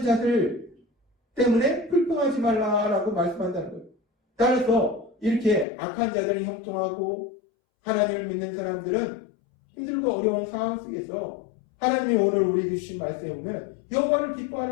자들 때문에 불평하지 말라라고 말씀한다는 거예요. 따라서 이렇게 악한 자들은 형통하고 하나님을 믿는 사람들은 힘들고 어려운 상황 속에서 하나님이 오늘 우리에게 주신 말씀에 보면 여호와를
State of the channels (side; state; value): right; drops out; at 5.7 s